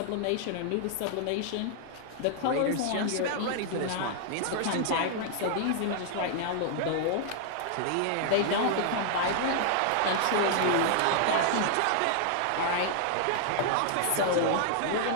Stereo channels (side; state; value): both; different; correlation -0.01